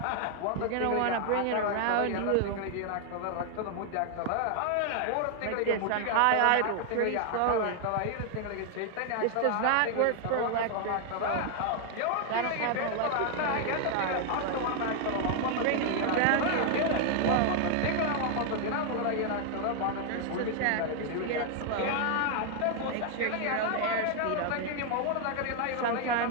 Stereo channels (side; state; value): both; different; correlation 0.00